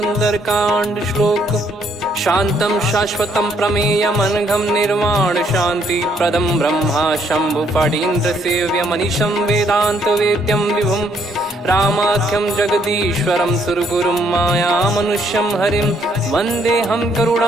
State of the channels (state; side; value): normal; both; correlation 0.69